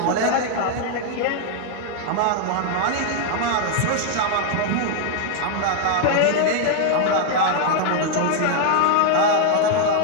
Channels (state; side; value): different; both; correlation 0.00